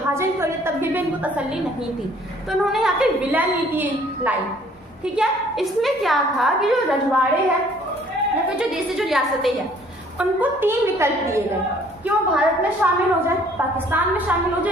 कर लिया, तब भी इनको तसल्ली नहीं थी, तो उन्होंने यहाँ पे विलय नीति लाई, ठीक है। इसमें क्या था कि जो रजवाड़े हैं या फिर जो देश जो रियासतें हैं उनको 3 विकल्प दिए गए कि वो भारत में शामिल हो जाए, पाकिस्तान में शामिल हो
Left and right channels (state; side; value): normal; both; correlation 0.58